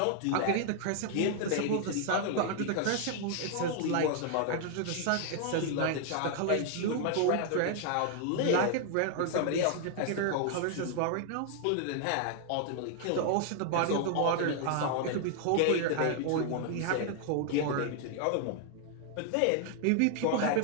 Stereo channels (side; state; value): both; different; correlation 0.00